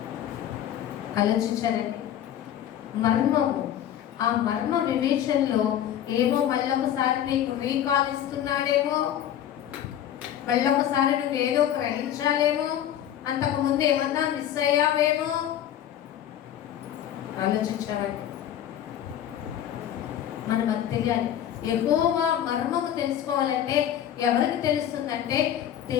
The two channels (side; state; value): right; quieter; 10.7 dB